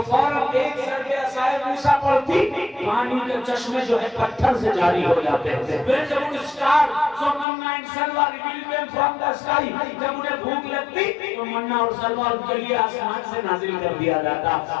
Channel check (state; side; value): drops out; right; at 7.5 s